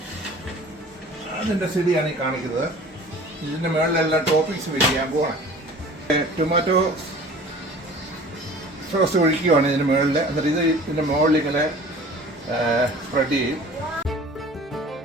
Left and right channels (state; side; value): normal; both; correlation 0.45